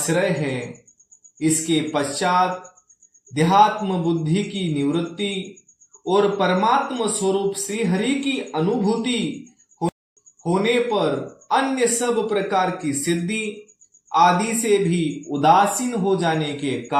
है। इसके पश्चात देहात्म बुद्धि की निवृत्ति और परमात्म स्वरूप श्री हरि की अनुभूति होने पर अन्य सब प्रकार की सिद्धि आदि से भी उदासीन हो जाने के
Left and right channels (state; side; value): identical; both; correlation 1.00